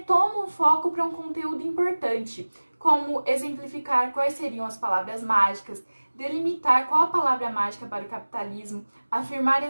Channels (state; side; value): inverted; both; correlation -1.00